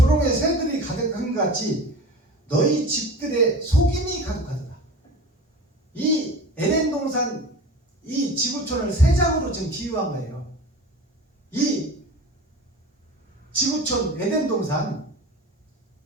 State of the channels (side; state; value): both; normal; correlation 0.36